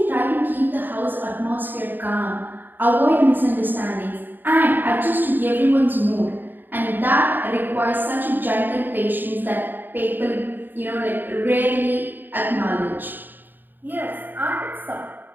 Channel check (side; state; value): left; late; 0.091 ms